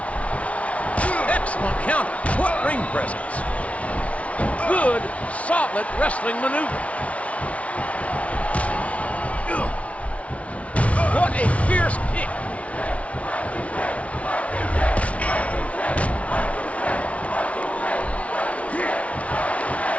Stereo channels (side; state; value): right; late; 0.065 ms